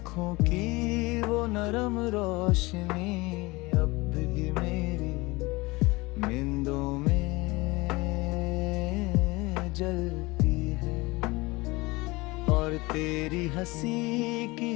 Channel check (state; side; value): quieter; right; 22.9 dB